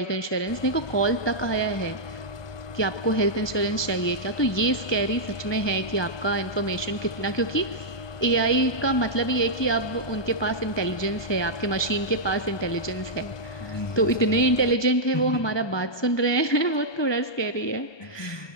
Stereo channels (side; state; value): right; late; 1.2 ms